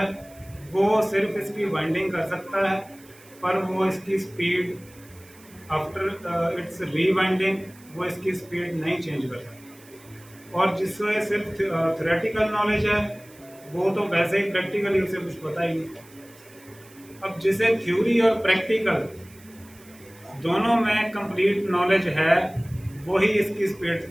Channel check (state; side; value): noise; right; hiss, 24 dB below the sound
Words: वो सिर्फ इसकी वाइंडिंग कर सकता है, पर वो इसकी स्पीड आफ्टर इट्स रीवाइंडिंग वो इसकी स्पीड नहीं चेंज कर सकता। और जिससे सिर्फ थ्योरेटिकल नॉलेज है, वो तो वैसे ही प्रैक्टिकली उसे कुछ पता ही नहीं। अब जिसे थ्योरी और प्रैक्टिकल दोनों में कंप्लीट नॉलेज है, वही इसकी